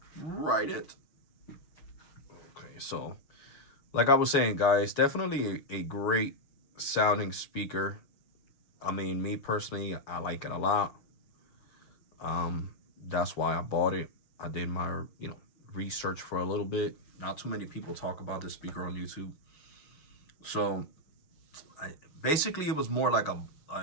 write it. Okay, so like I was saying, guys, definitely a great sounding speaker. I mean, me personally, I like it a lot. That's why I bought it. I did my, you know, research for a little bit. Not too many people talk about this speaker on YouTube. So basically, it was more like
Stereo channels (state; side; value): late; right; 6.6 ms